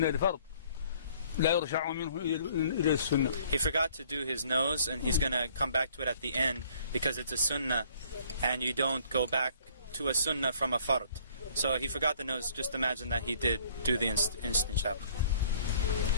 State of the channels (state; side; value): inverted; both; correlation -0.58